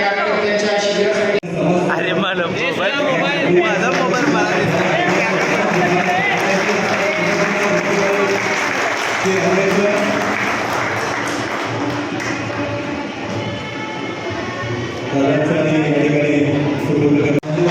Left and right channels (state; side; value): identical; both; correlation 1.00